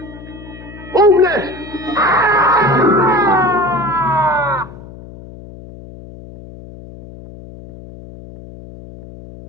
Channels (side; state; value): left; noise; hum, 17 dB below the sound